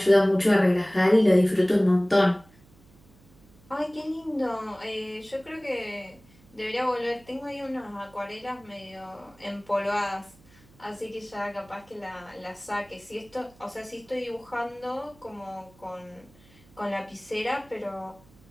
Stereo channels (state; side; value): noise; right; hum, 27 dB below the sound